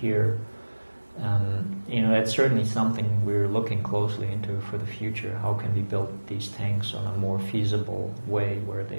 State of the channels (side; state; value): both; inverted; correlation -1.00